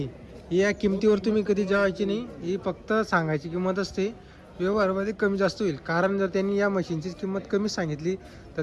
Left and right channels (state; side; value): identical; both; correlation 1.00